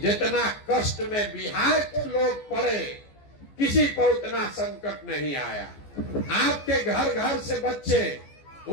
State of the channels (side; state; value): right; late; 14 ms